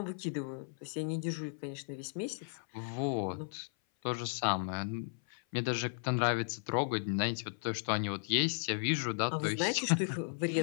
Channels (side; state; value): right; silent; 54 dB below the other